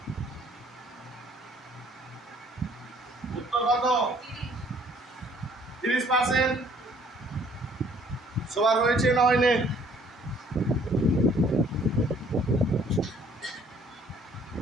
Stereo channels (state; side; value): normal; both; correlation 0.59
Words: উত্তর কত? 30%। সবার হয়েছে না হয়নি?